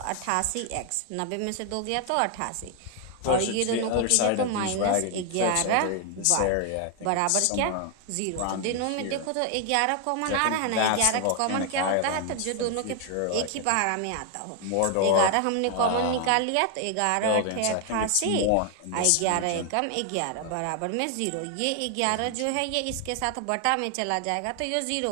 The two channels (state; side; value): different; both; correlation 0.00